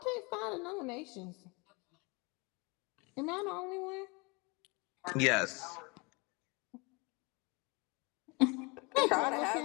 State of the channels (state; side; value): quieter; right; 28.3 dB